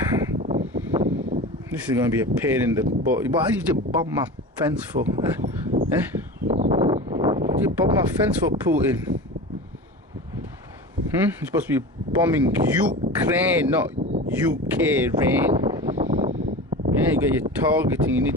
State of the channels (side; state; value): both; normal; correlation 0.31